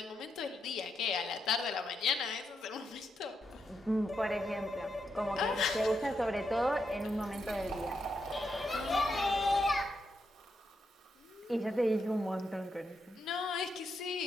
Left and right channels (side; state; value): both; normal; correlation 0.82